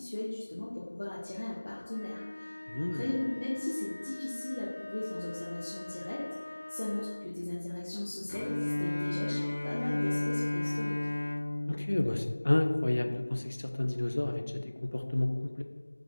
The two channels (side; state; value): both; inverted; correlation -1.00